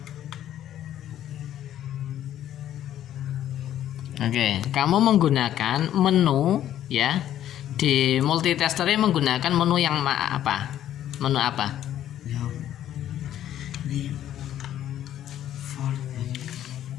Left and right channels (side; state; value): right; quieter; 11.6 dB